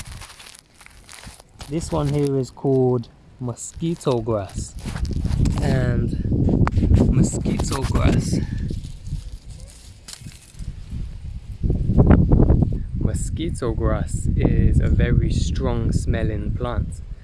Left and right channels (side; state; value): both; identical; correlation 1.00